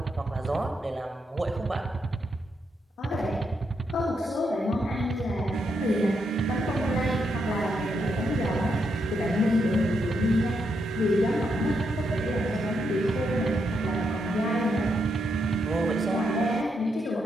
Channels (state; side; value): normal; both; correlation 0.80